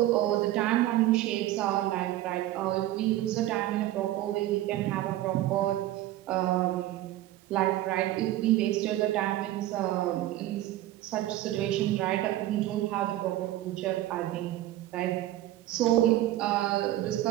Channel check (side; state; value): left; quieter; 14.8 dB